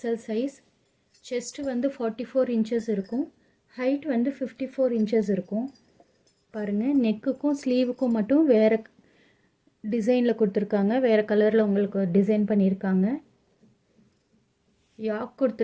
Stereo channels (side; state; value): both; identical; correlation 1.00